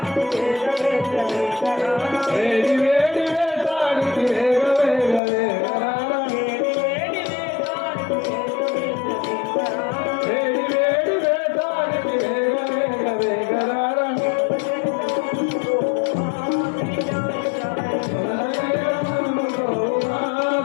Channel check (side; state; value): right; drops out; at 5.2 s